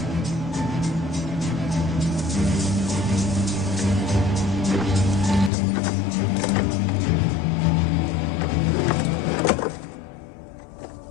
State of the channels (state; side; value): drops out; right; at 5.5 s